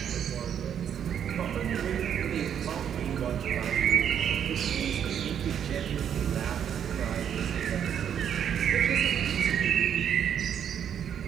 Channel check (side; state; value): left; quieter; 8.9 dB